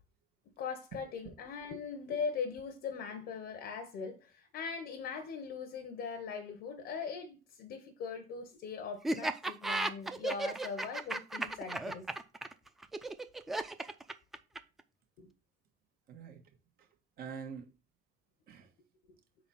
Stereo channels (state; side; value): normal; both; correlation 0.40